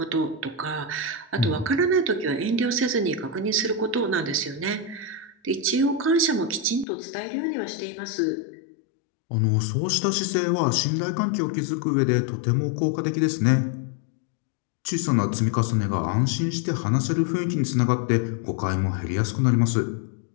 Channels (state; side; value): drops out; right; at 6.9 s